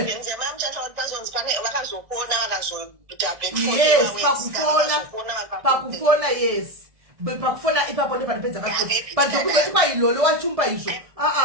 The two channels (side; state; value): left; late; 1.6 ms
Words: pakufona yes. Pakufona ipapo ndo panipedza kaso. But zokuzoti kwa Lolo wachumba izvo.